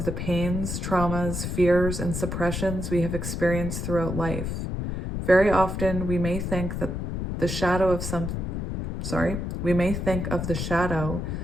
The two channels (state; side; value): noise; left; rumble, 3 dB below the sound